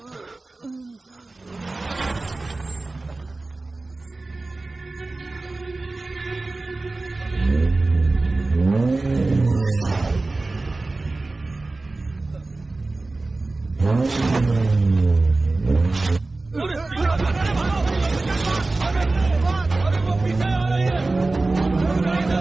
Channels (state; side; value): quieter; left; 3.3 dB